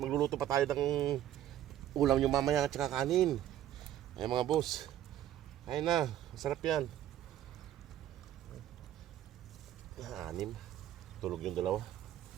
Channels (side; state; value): left; quieter; 12.0 dB